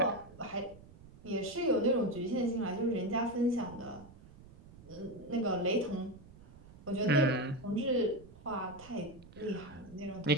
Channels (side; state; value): right; noise; rumble, 21 dB below the sound